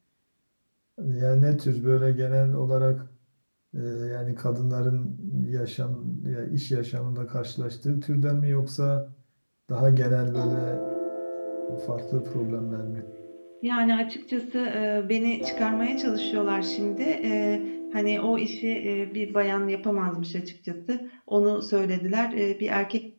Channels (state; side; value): inverted; both; correlation -1.00